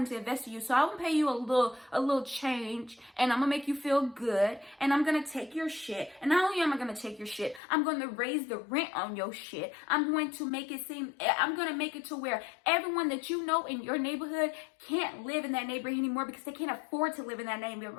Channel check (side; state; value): right; drops out; at 7.6 s